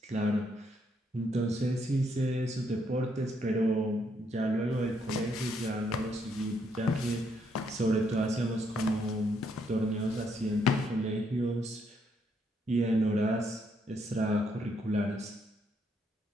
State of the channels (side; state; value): both; normal; correlation 0.73